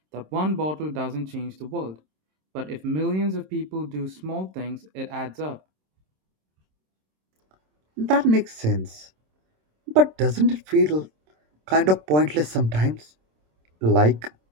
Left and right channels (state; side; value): late; left; 26 ms